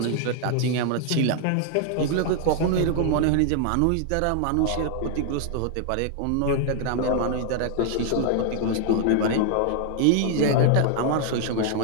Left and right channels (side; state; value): both; different; correlation 0.00